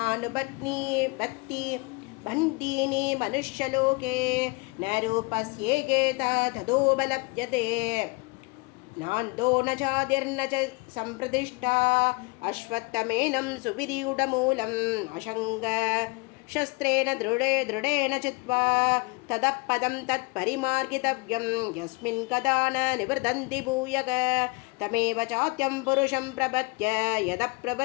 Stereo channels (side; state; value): right; quieter; 27.7 dB